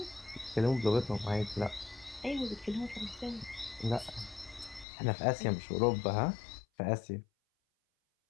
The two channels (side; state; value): right; drops out; at 4.9 s